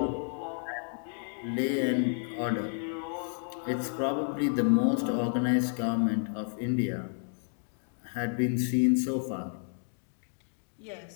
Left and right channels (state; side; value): silent; right; 57 dB below the other